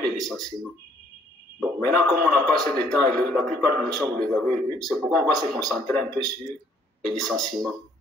le licenciement. Bon, maintenant, comme on n'a pas assez de temps, et la plupart des notions, vous les avez vues, c'est pourquoi on va se concentrer un peu sur les licenciements.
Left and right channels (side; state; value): both; normal; correlation 0.64